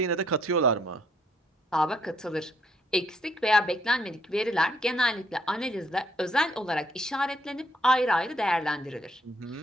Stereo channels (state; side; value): normal; both; correlation 0.70